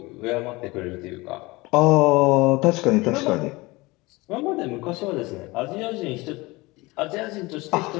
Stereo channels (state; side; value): quieter; right; 22.6 dB